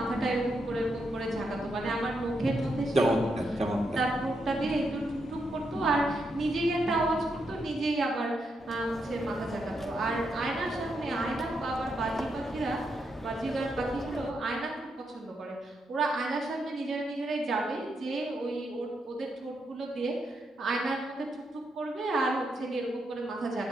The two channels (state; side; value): normal; both; correlation 0.81